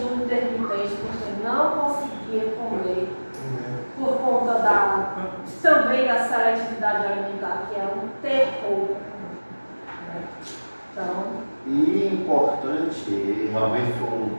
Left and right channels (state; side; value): inverted; both; correlation -1.00